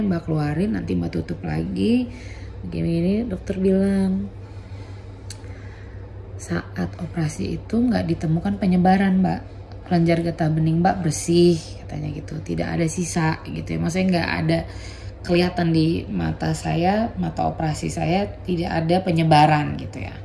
mbak keluarin, nanti mbak tutup lagi begini. Dokter bilang saat operasi itu nggak ditemukan penyebaran mbak, kelenjar getah bening mbak bersih katanya gitu, tidak ada sisa gitu ya, maksudnya nggak ada kelihatan di mata saya, mata operasi saya tidak ada penyebaran gitu ya.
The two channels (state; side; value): identical; both; correlation 1.00